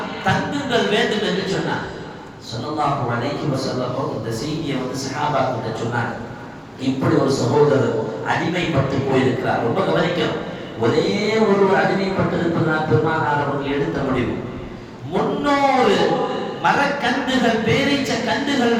தங்குங்கள் வேண்டும் என்று சொன்னார். ஸல்லல்லாஹு அலைஹி வஸல்லம் இந்த செய்தியை சஹாபாக்கிட்ட சொன்னாங்க. இப்படி ஒரு சகோதரர் அடிமைப்பட்டு போயிருக்கிறார். ரொம்ப கவனிக்கணும். ஒரே ஒருவர் அடிமைப்பட்டு இருப்பதனால் பெருமானார் அவர்கள் எடுத்த முடிவு 300 மரக்கன்றுகள் பேரீச்ச கன்றுகள்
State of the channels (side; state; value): both; identical; correlation 1.00